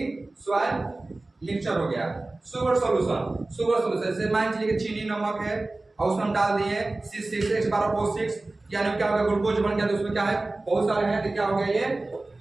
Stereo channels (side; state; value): left; quieter; 3.0 dB